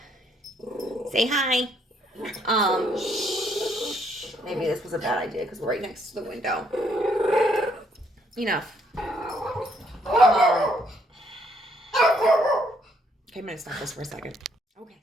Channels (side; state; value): both; normal; correlation 0.70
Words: say hi. Maybe this was a bad idea because we're right next to the window. Enough. Okay, I'm gonna stop this for a second. Okay.